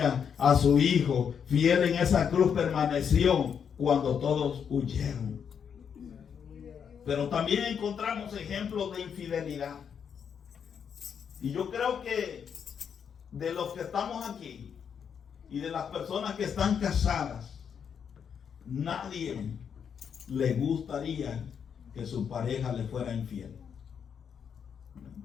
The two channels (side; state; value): right; quieter; 7.4 dB